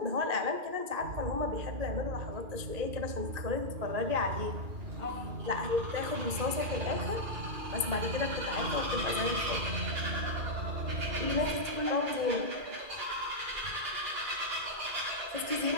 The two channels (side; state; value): left; late; 2.4 ms